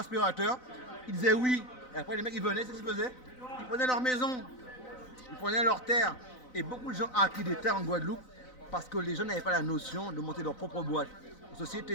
ils disaient oui. Et après les mecs ils venaient, c'est ce qu'ils faisaient. Ils prenaient leur maison, ils prenaient leurs terres. Et beaucoup de gens ont acquis des terres en Guadeloupe parce que les gens n'avaient pas la notion de monter leur propre boîte. La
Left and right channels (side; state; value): right; late; 4.0 ms